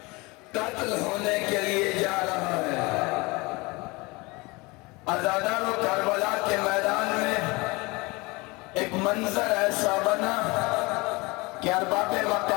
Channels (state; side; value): quieter; right; 25.0 dB